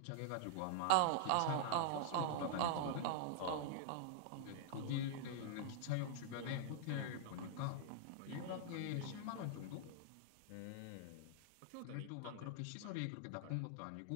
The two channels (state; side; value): different; both; correlation -0.01